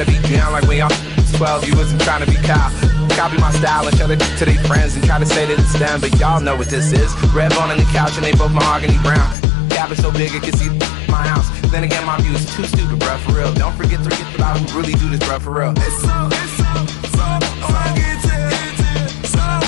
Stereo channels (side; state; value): right; drops out; at 9.3 s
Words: be down like when y'all 12. You wasn't trying to be Kyle. Copy my style and show it to their friends and try to say that it's them, but y'all know what this is. Red bone on the couch and they both mahogany brown. Gap is so big it can see my house. Then again, my view is too stupid, bruh, for real. Don't forget about who really do this, bruh, for real.